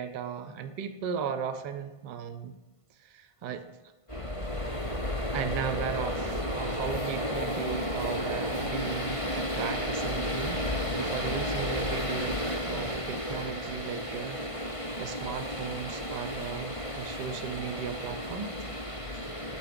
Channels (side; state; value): right; late; 1.5 ms